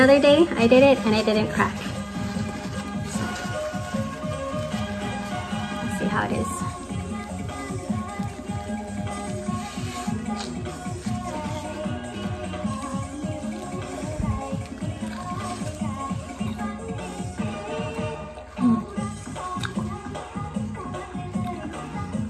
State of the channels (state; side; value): identical; both; correlation 1.00